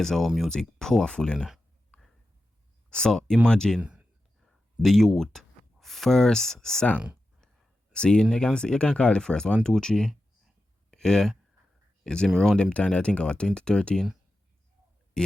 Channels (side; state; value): both; normal; correlation 0.91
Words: how music powerful, you know. So imagine the youth first song. See, you can call it first 1, 2, 3. Yeah. You see me around them time I think about 2013.